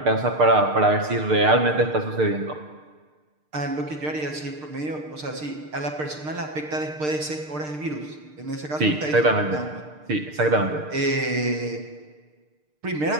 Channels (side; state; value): left; late; 6.6 ms